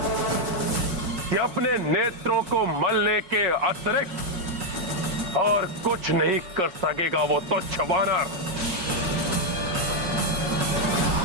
कि अपने नेत्रों को मलने के अतिरिक्त और कुछ नहीं कर सकेगा वो तुच्छ वानर।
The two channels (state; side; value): late; left; 5.6 ms